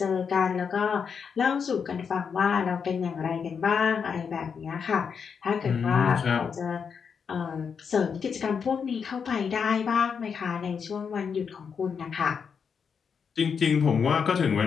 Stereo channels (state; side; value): quieter; right; 6.4 dB